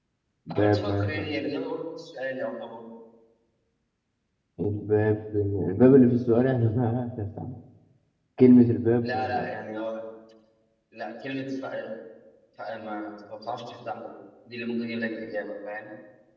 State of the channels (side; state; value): both; identical; correlation 1.00